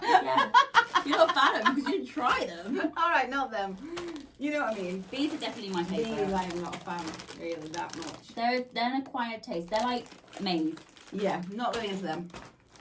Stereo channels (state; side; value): identical; both; correlation 1.00